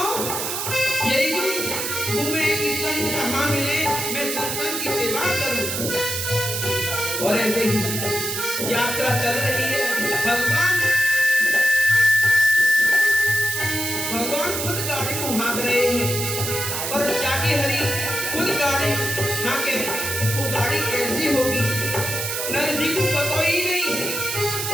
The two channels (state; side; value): noise; right; hiss, 3 dB below the sound